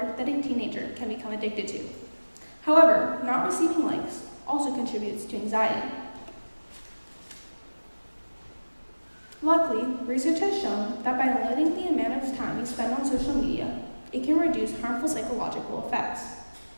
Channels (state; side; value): inverted; both; correlation -1.00